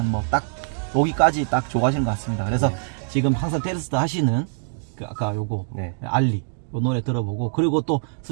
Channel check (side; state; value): left; silent; digital silence